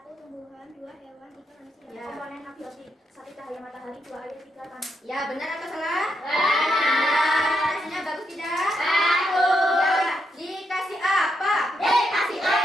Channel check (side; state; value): both; normal; correlation 0.80